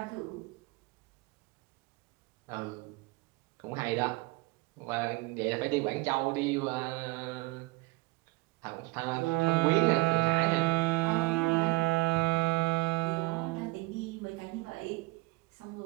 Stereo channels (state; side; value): quieter; left; 21.8 dB